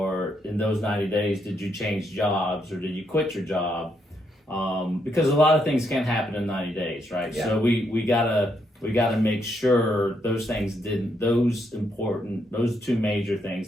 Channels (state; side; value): normal; both; correlation 0.77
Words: in those 90 days, did you change jobs, or did you quit your job? Because a lot of things can happen in 90 days, right? Yeah. So we gotta make sure those two major